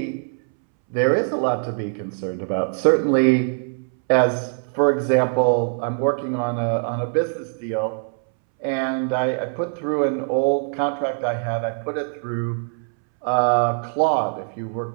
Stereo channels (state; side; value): silent; left; 64 dB below the other